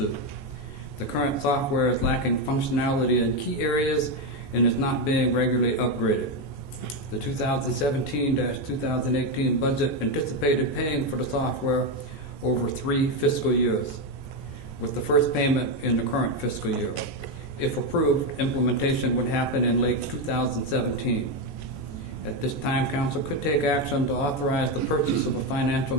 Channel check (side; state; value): right; late; 14 ms